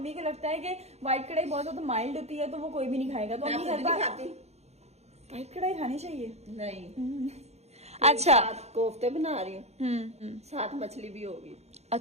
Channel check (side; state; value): left; late; 0.31 ms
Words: को लगता है कि व्हाइट कढ़ाई बहुत ज्यादा माइल्ड होती है, तो वो कोई भी नहीं खाएगा। तो अम्मी हर बार व्हाइट कढ़ाई खानी चाहिए। नहीं, अच्छा, कोफ्ते बना रही हूँ, साथ मछली भी होगी।